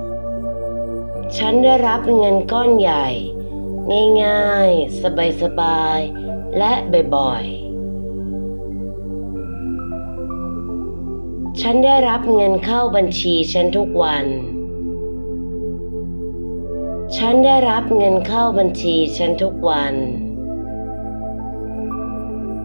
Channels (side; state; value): both; inverted; correlation -1.00